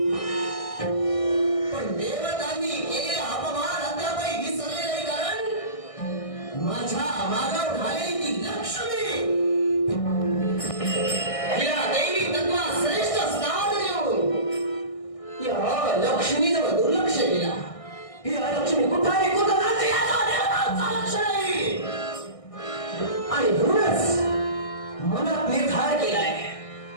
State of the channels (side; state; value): right; late; 1.6 ms